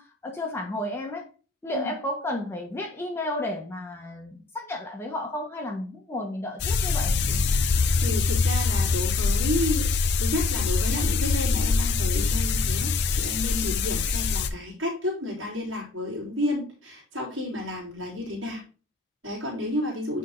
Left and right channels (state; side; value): quieter; right; 3.3 dB